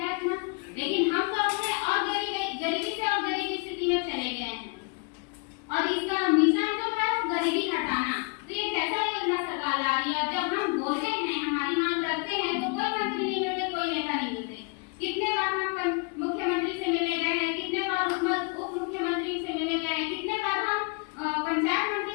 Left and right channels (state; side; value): quieter; right; 31.0 dB